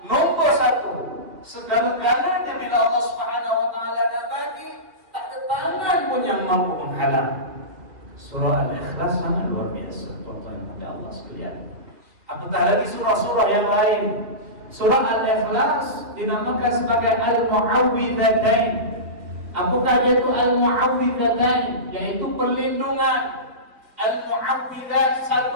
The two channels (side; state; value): left; late; 2.7 ms